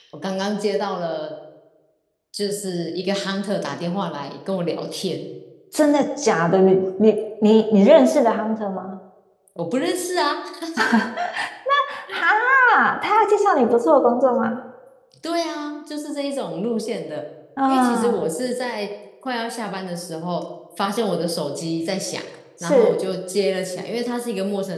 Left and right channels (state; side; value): identical; both; correlation 1.00